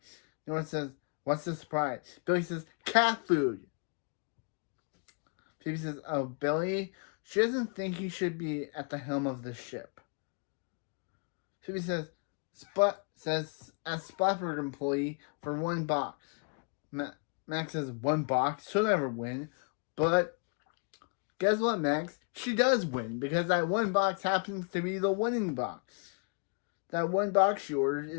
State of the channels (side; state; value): right; quieter; 38.8 dB